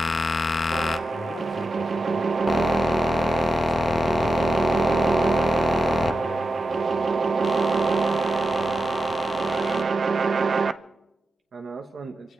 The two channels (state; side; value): normal; both; correlation 0.90